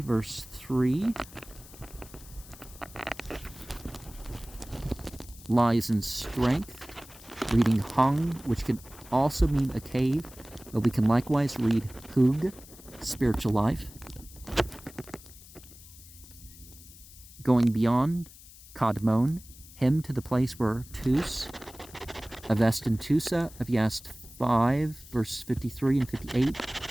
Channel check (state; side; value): noise; left; hiss, 20 dB below the sound